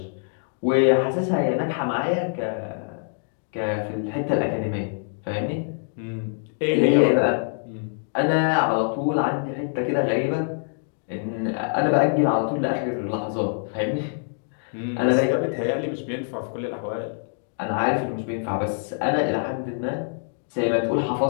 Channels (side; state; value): right; silent; digital silence